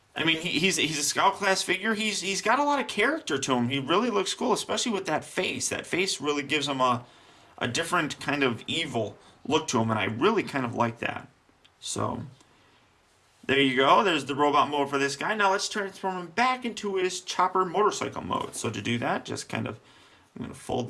mean, he's a scout class figure. He's got a lot of character to him. He really looks cool, especially with that face. That face really gives him a different kind of evil look to him, and I really kind of like that. So there you go. There's the robot mode for this guy. Now let's transform him back into his chopper motorcycle mode. So to do that, just kind of, I'm going to fold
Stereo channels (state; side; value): identical; both; correlation 1.00